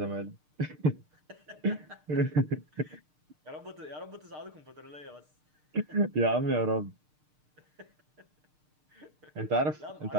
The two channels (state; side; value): late; left; 6.6 ms